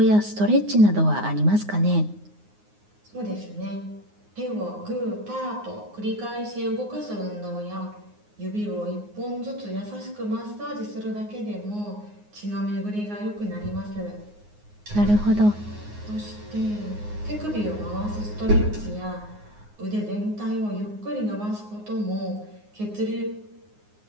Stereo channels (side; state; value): left; late; 9.6 ms